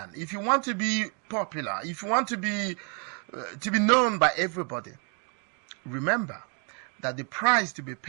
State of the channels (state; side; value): quieter; left; 38.5 dB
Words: if you want to be popular, if you want to be known by everybody, remember that the price to be